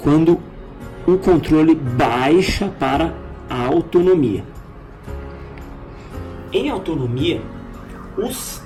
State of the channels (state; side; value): identical; both; correlation 1.00